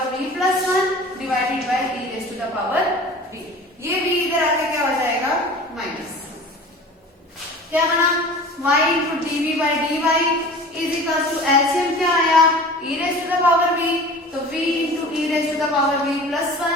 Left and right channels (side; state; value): both; normal; correlation 0.40